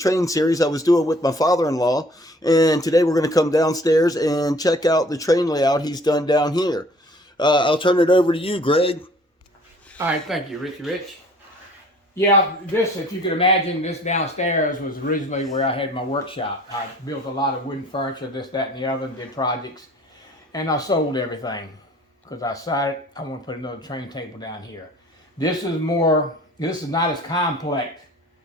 series I was doing with my father-in-law. And today we're going to come downstairs and check out the train layout he's done down here. I'll turn it over to you, Greg. All right, thank you, Richie Rich. Yeah, this, if you could imagine, this downstairs was originally where I had my workshop. I built a lot of wooden furniture, this, that, and the other, did projects, and I sold everything because I decided I want to put another train table down here. This is not as complex.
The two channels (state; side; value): normal; both; correlation 0.52